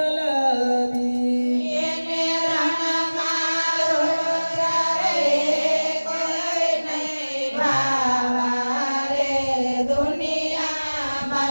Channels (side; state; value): both; inverted; correlation -1.00